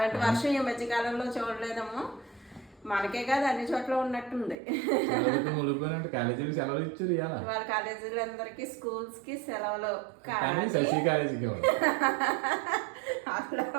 వర్షం ఈ మధ్యకాలంలో చూడలేదమ్మా. మనకే కాదు అన్ని చోట్ల ఉన్నట్టుంది. కాలేజీకి సెలవులు ఇచ్చారు వాళ్ళ కాలేజీలందరికి స్కూల్స్ కి సెలవులు. శశి కాలేజీకి అట్లా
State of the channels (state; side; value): drops out; left; at 4.5 s